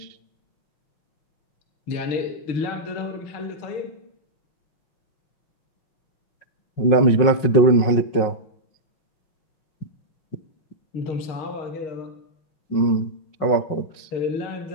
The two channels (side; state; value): right; late; 5.5 ms